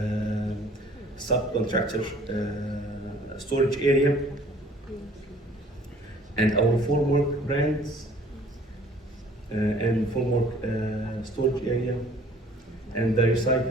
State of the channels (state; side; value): normal; both; correlation 0.54